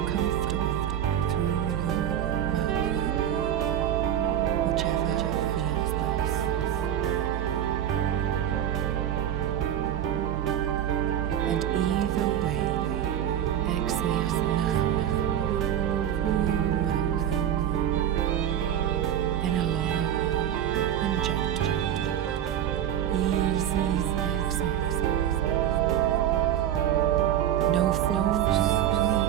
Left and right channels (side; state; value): left; quieter; 10.6 dB